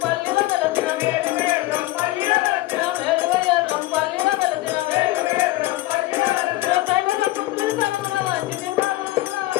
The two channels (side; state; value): right; quieter; 17.5 dB